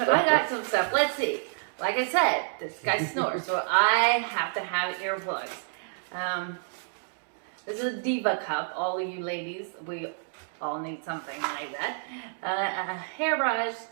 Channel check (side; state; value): left; silent; digital silence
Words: I got some stuff. Let's see. Like I said, this guy snores, so I have to have earplugs. This is a Diva cup. All of you ladies, we all need something like that. A hairbrush,